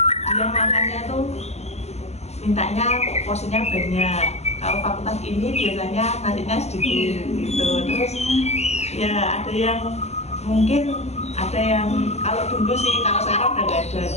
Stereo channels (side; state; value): right; late; 0.32 ms